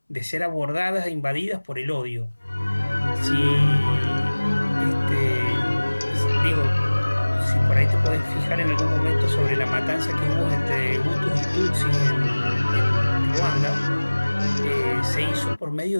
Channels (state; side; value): inverted; both; correlation -1.00